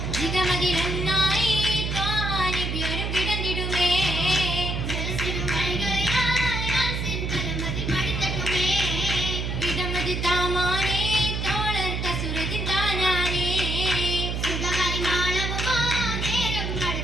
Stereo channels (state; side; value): noise; right; hum, 2 dB below the sound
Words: ജിഗമതിരന്നായി നബിയോരും കിടന്നിടുമേ ജലസിരും വഴികളിലായി ആസിൻ കലമതി മടിത്തട്ടുമേ ഇടമതി താമാനേ തോളർ കസുരത്തിൻ താനാനേ സുഖമായി മാളവുമാ നേരം